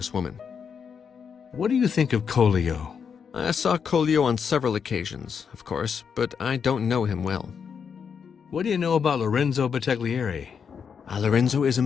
woman. What do you think of Colio? I saw Colio on several occasions, of course, but I don't know him well. What do you know about Lorenzo Battaglieri? Lorenzo is a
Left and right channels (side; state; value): right; quieter; 6.7 dB